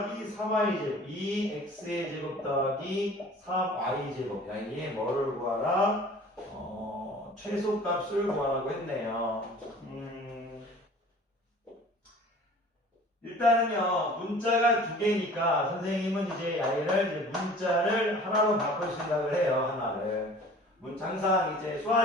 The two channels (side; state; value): both; normal; correlation 0.46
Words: 3y제곱 2x의 제곱 더하기 3y제곱 여기에 뭐를 구하라? 최소값을 구하라고 했네요. 일단은요, 문자가 두 개니까 선생님은 이제 얘를 문자를 하나로 바꿀 생각을 해요. 하나를. 항상 이제